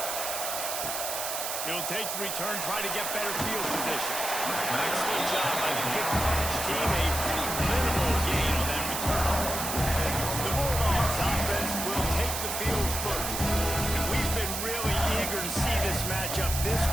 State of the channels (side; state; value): right; noise; hiss, 3 dB below the sound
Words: He'll take the return, try to get better field position. Excellent job by the kick coverage team. A pretty minimal gain on that return. The Bulldogs offense will take the field first. And we've been really eager to see this matchup. This